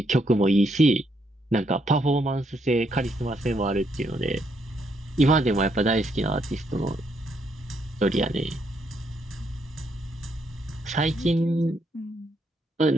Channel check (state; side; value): normal; both; correlation 0.75